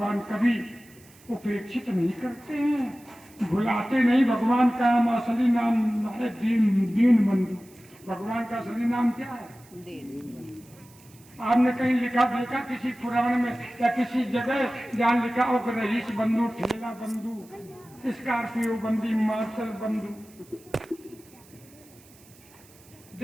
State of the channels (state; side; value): noise; right; hiss, 26 dB below the sound